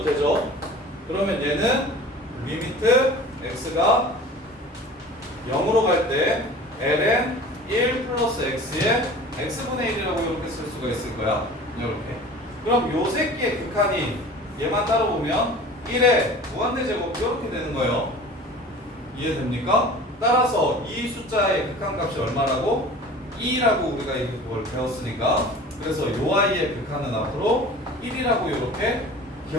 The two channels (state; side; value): normal; both; correlation 0.42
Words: 되죠. 그러면 얘는 리미트 x가 0으로 갈 때 ln 1 플러스 x에 x분의 1이라고 이렇게 쓸 수가 있을 거야. 이렇게. 그럼 요 새끼의 극한이 얘만 따로 보면 1의 무한대제곱 이렇게 되는 거예요. 이해됩니까? 따라서 이 숫자의 극한값이 얼마라고? 2라고 우리가 이걸 배웠으니까. 그래서 요 아이의 극한은 앞으로 1이라고 이렇게